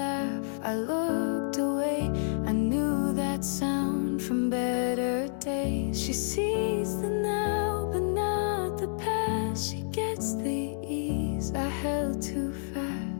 I looked away. I knew that sound from better days. She sees the now, but not the past. She gets the ease I held too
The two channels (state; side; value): silent; right; 58 dB below the other